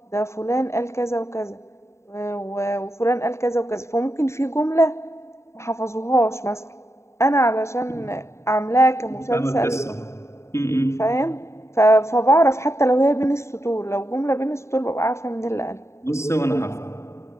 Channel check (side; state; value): right; late; 0.13 ms